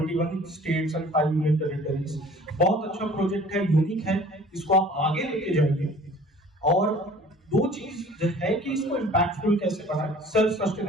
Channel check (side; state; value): both; normal; correlation 0.49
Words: states and 5 union territories. बहुत अच्छा प्रोजेक्ट है, यूनिक है, इसको आप आगे लेके जाएंगे। और दो चीज है कि इसको इम्पैक्टफुल कैसे बनाए, सेल्फ